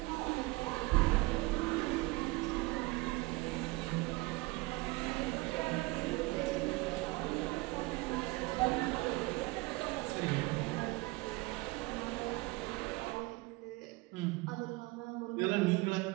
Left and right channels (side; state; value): left; quieter; 22.9 dB